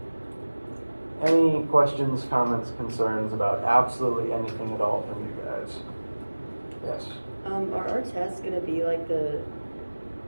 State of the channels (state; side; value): inverted; both; correlation -1.00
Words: any questions, comments, concerns about absolutely anything at all from you guys? Yes? Are our tests gonna be like